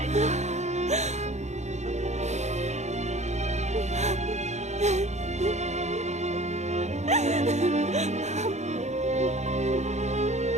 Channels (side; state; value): left; late; 0.33 ms